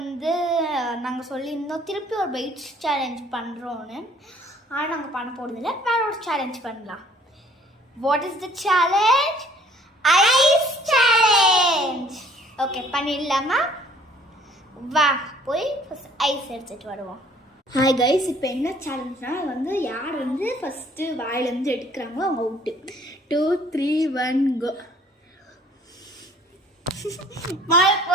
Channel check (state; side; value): normal; both; correlation 0.56